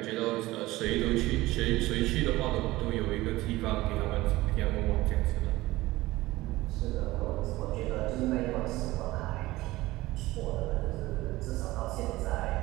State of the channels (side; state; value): left; quieter; 18.5 dB